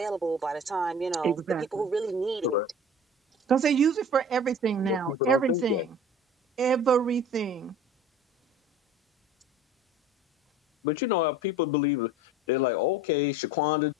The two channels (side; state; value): both; normal; correlation 0.42